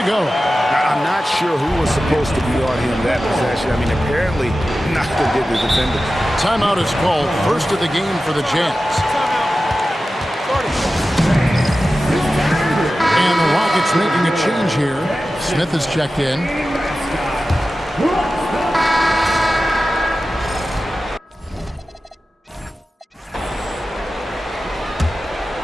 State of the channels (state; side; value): normal; both; correlation 0.94